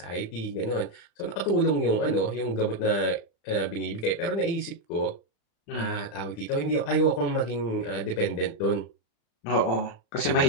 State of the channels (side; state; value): right; late; 35 ms